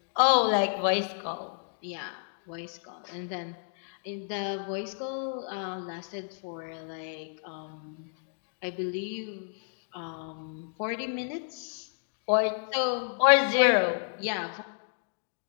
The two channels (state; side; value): silent; right; digital silence